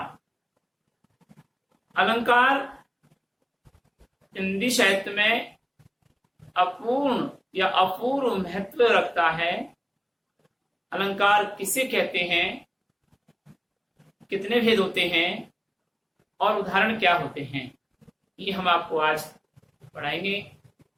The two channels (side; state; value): both; identical; correlation 1.00